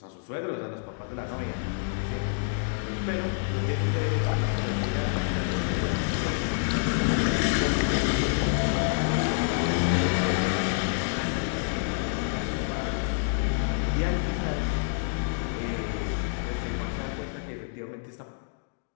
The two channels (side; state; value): right; silent; digital silence